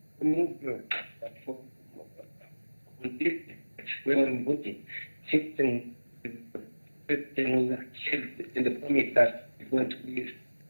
movement for when voting, in the promise that it's going to be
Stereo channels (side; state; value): both; inverted; correlation -1.00